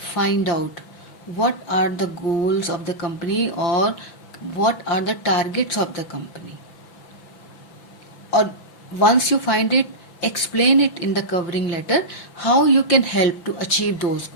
find out what are the goals of the company और what are the targets of the company. Or once you find it, explain it in the covering letter how you can help to achieve those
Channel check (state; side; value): late; right; 5.9 ms